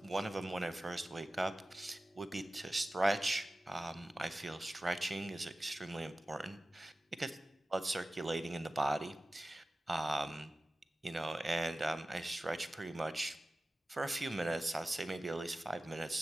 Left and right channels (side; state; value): both; normal; correlation 0.95